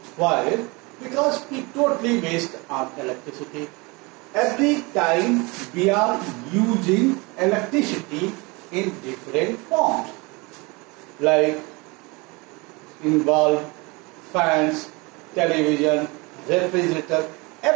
Why? Because we totally waste our electricity. Every time we are using electricity in different forms, like in bulb, fans, television, refrigerator,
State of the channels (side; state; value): left; quieter; 26.5 dB